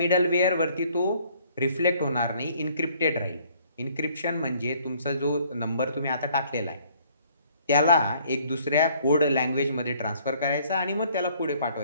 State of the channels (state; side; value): inverted; both; correlation -0.60